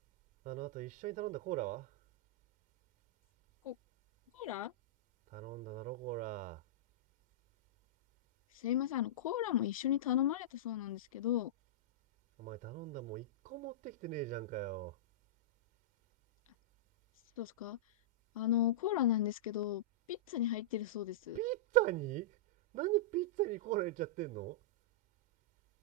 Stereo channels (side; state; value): both; normal; correlation -0.14